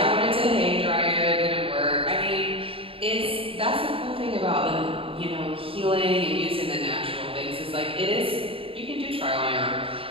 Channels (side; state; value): left; late; 0.27 ms